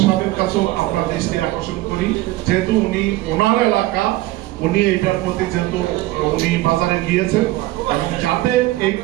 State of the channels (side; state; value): left; quieter; 17.8 dB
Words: সাহেবের কাছেও আমরা দৃষ্টি আকর্ষণ করি, যেহেতু উনি ওনার এলাকা, উনি এটার প্রতি যেহেতু উনি বাজারে গিয়েছেন এবং যাতে এই